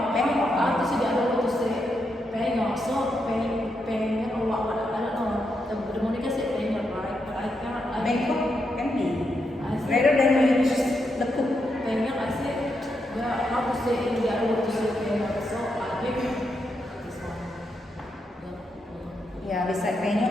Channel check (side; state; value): both; normal; correlation 0.82